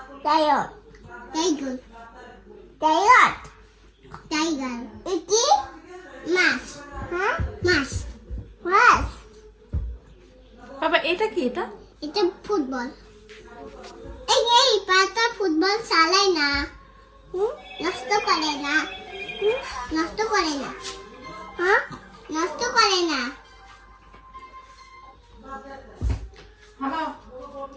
টাইগার। টাইগার। টাইগার। টাইগার। এই কি? মাছ। হ্যাঁ? মাছ। মাছ। বাবা এটা কি? এটা এটা ফুটবল। এই পাতা ফুটবল চালায় না, নষ্ট করে না, নষ্ট করে না, হ্যাঁ নষ্ট করে না।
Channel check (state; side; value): identical; both; correlation 1.00